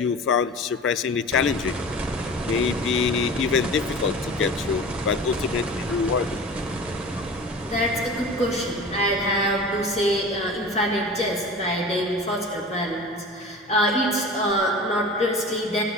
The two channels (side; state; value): both; normal; correlation 0.37